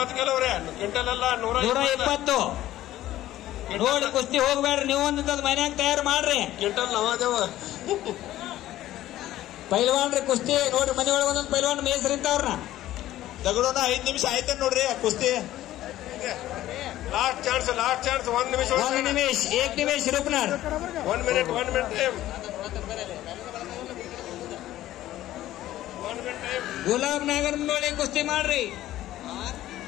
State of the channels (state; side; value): quieter; right; 14.2 dB